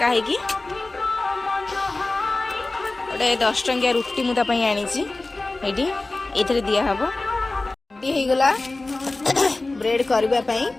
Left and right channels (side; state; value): right; quieter; 3.1 dB